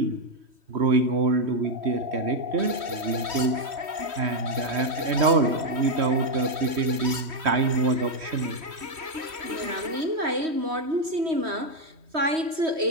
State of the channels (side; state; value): left; late; 3.1 ms